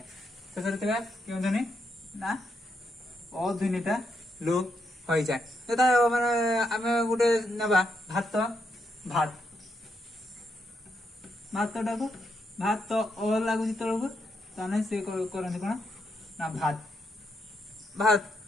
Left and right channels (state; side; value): normal; both; correlation 0.80